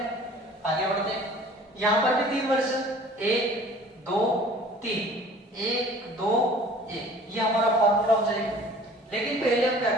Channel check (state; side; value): normal; both; correlation 0.48